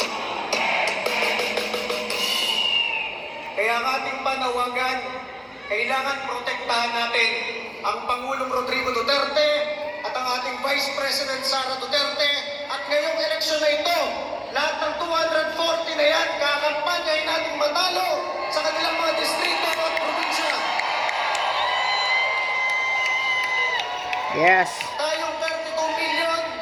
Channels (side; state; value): both; identical; correlation 1.00